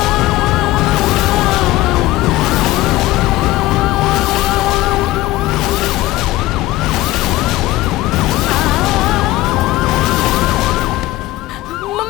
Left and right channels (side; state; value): right; quieter; 17.5 dB